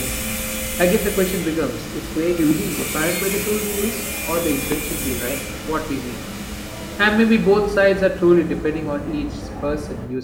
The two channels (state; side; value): identical; both; correlation 1.00